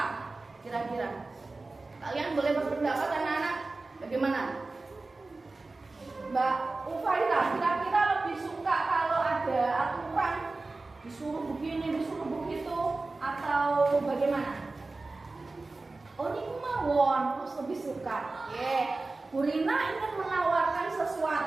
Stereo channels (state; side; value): quieter; left; 3.4 dB